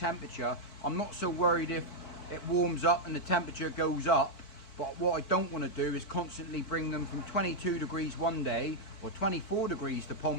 I'm not so worried if it warms up and the temperature goes up, but what I don't want to do is constantly bring them from 22 degrees one day, or 24 degrees the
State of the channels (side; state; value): right; late; 4.5 ms